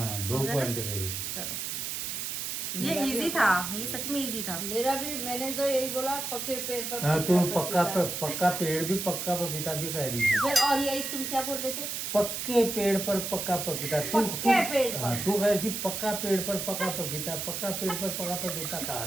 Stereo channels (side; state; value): right; noise; hiss, 4 dB below the sound